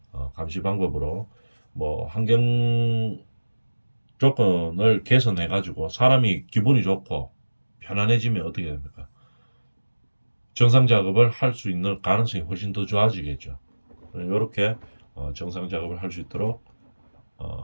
감시 방법으로 뭐 환경 조건을 개선해가지고 사람이 기분이 좋고 편안해지면 어떻게 됩니까? 정상 작업을 할 수 있는 가능성이 훨씬 더 좋아지겠죠. 이렇게 정상 작업을 할 수 있도록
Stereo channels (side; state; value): both; inverted; correlation -1.00